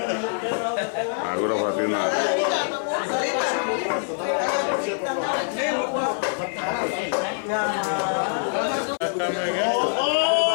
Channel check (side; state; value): right; silent; 62 dB below the other